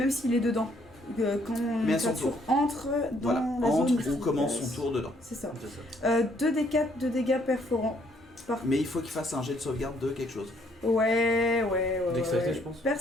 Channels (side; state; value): both; normal; correlation 0.67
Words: s'il est dedans. Quand Mais à la son créature tour. entre dans Voilà, la entre zone ou commence efficace. son tour dedans. C'est ça. C'est ça. 2d4 de dégâts perforants. Mais il faut qu'il fasse un jet de sauvegarde de quelque chose. Ouais. Dextérité, je pense.